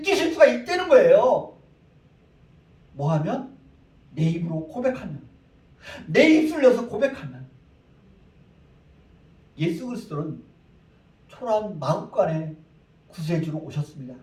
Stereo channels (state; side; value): identical; both; correlation 1.00